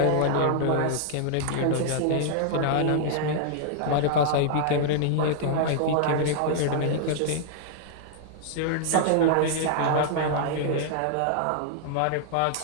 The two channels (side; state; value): both; different; correlation -0.01